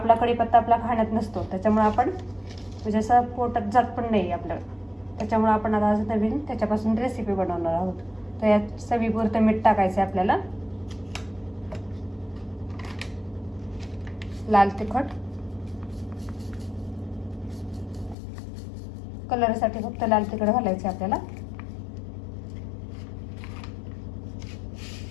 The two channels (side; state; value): right; drops out; at 18.2 s